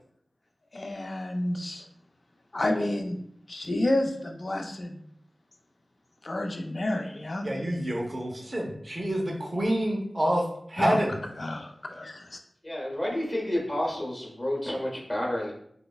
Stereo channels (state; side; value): normal; both; correlation 0.97